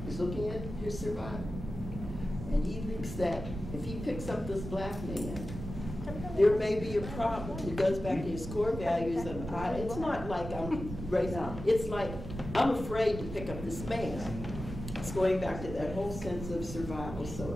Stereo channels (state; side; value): noise; right; rumble, 8 dB below the sound